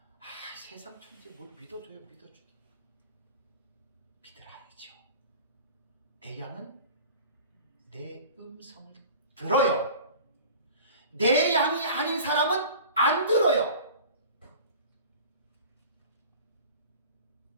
세상 천지 뭘 믿어줘요. 믿으라야죠. 내 양은 내 음성을 들어요. 내 양이 아닌 사람은 안 들어요.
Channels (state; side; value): inverted; both; correlation -0.41